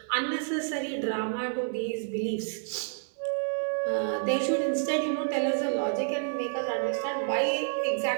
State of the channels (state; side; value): silent; left; digital silence